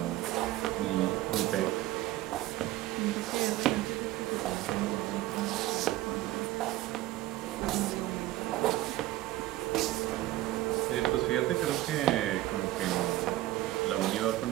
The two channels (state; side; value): quieter; left; 16.1 dB